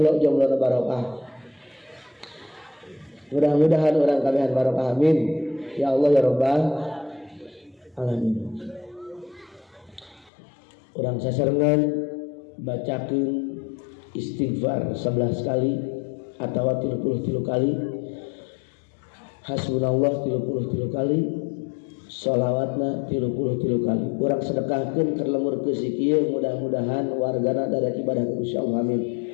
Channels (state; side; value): drops out; right; at 10.3 s